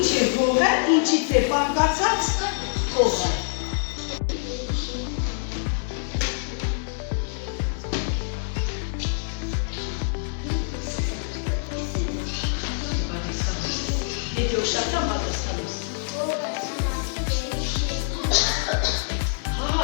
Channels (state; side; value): silent; right; digital silence